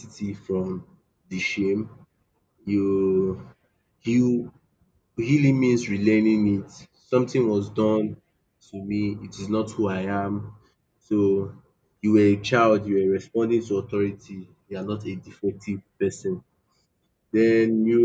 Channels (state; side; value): identical; both; correlation 1.00